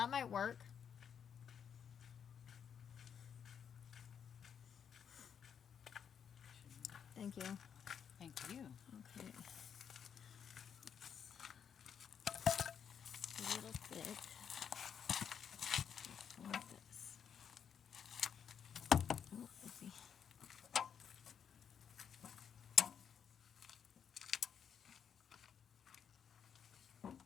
might work. Thank you. Thank you. Okay. A little thick. Like this. Oh, let's see.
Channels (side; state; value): right; quieter; 7.8 dB